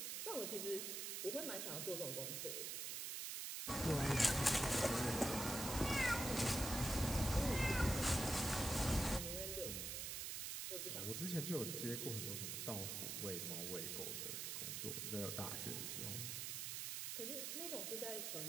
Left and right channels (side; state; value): right; noise; hiss, 3 dB below the sound